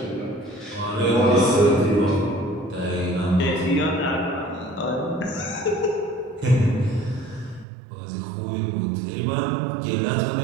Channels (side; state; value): left; drops out; at 7.7 s